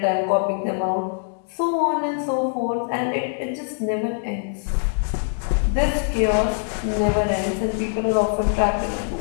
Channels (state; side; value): silent; right; digital silence